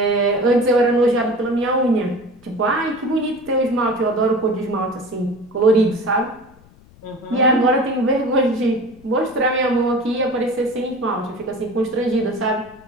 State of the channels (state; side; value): noise; left; rumble, 26 dB below the sound